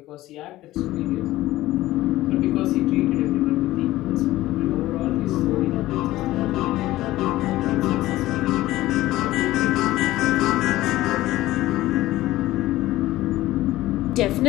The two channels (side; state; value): right; quieter; 16.4 dB